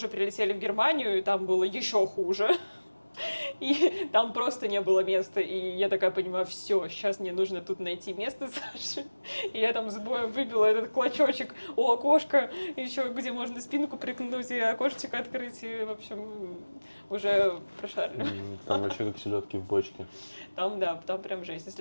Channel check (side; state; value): both; inverted; correlation -1.00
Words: прилетели в Германию, и там было еще хуже, И там просто не было места. И я такая понимаю, все, сейчас мне нужно тут найти место Саши. И я там с боем выбила этот клочочек у окошка, еще где можно спинку прикнуть и окошечко открыть. И, в общем, уже прошарили. Там вообще как селедки в бочке. Там, да, там прям жесть.